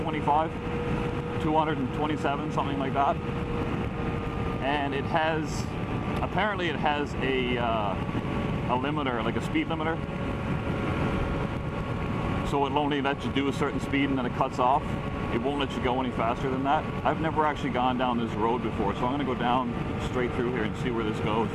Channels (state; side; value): identical; both; correlation 1.00